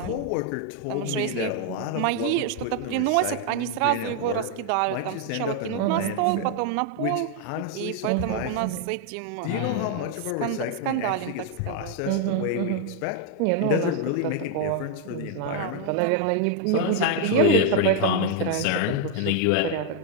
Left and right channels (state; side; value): different; both; correlation 0.00